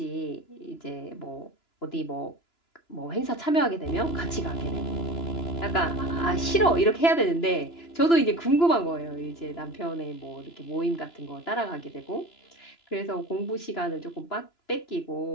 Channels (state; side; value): late; right; 2.9 ms